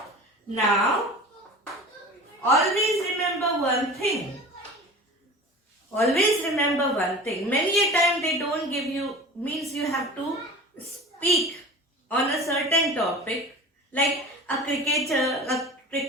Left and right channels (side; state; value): both; normal; correlation 0.37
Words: Now, always remember one thing. Many a time they don't give you, means you have to speak on a certain topic Like a cricketer, a